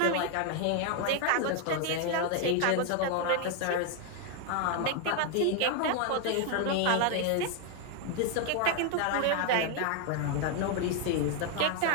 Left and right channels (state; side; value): different; both; correlation 0.01